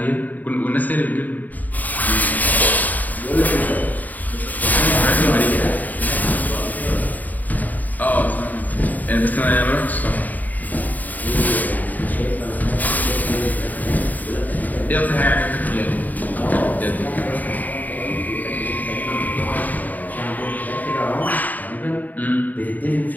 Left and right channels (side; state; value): right; late; 0.081 ms